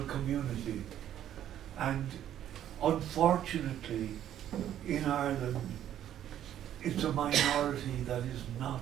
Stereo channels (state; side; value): quieter; left; 11.1 dB